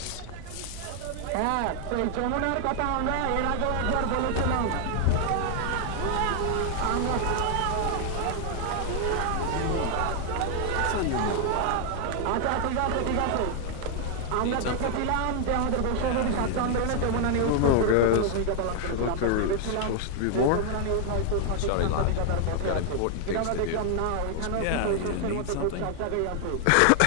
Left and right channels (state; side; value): different; both; correlation 0.00